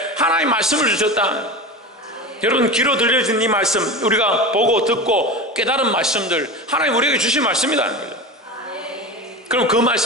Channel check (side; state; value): both; normal; correlation 0.27